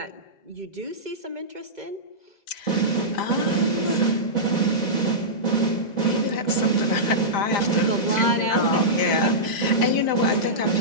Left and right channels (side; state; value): right; late; 2.0 ms